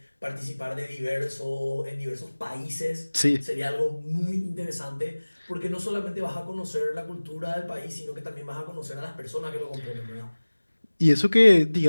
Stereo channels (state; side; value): inverted; both; correlation -1.00